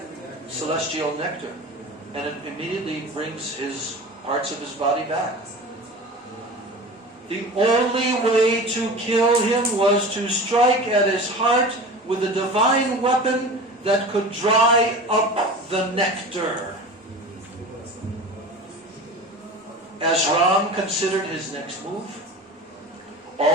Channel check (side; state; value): both; normal; correlation 0.34